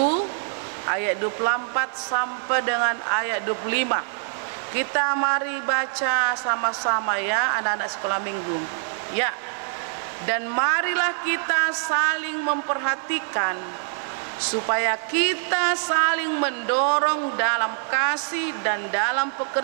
ayat 24 sampai dengan ayat 25. Kita mari baca sama-sama ya anak-anak sekolah minggu. Ya. Dan marilah kita saling memperhatikan supaya kita saling mendorong dalam kasih dan dalam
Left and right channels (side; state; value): left; silent; 62 dB below the other